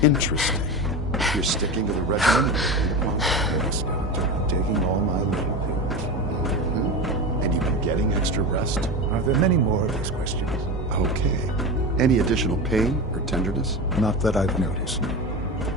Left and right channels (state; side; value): normal; both; correlation 0.24